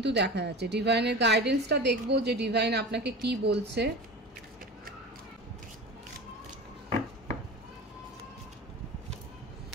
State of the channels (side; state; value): both; normal; correlation 0.32